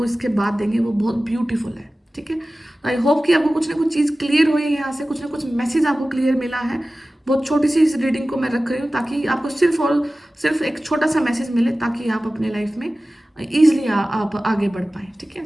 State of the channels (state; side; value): normal; both; correlation 0.96